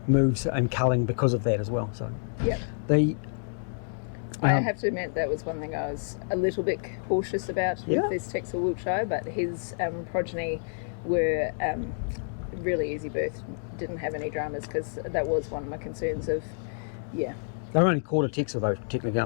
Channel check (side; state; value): right; silent; digital silence